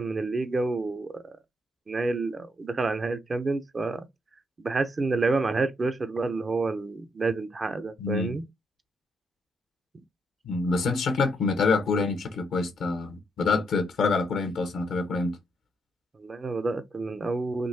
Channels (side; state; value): both; normal; correlation 0.77